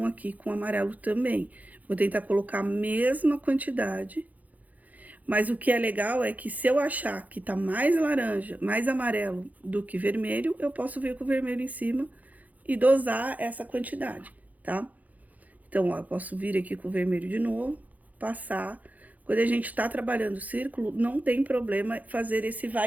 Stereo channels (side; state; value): left; late; 0.078 ms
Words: aqui com amarelo também. Vou tentar colocar a mesma quantidade. Mas o que é legal é que se eu achar que tá mais laranja, mais amarelo do que vermelho, eu posso vir com o vermelho em cima e dosar essa quantidade, tá? Então, ó, eu posso vir aqui com o vermelho de novo, passar. Quando a gente tá trabalhando o círculo, não tem problema fazer esse